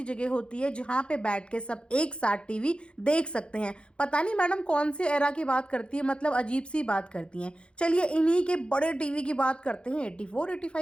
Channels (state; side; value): late; right; 0.056 ms